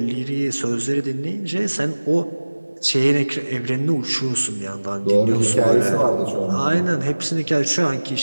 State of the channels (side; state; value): both; inverted; correlation -1.00